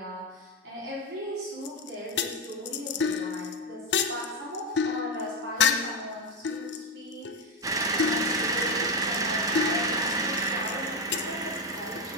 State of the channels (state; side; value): normal; both; correlation 0.10